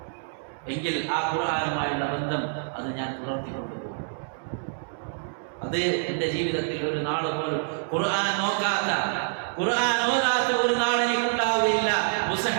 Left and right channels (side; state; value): left; silent; digital silence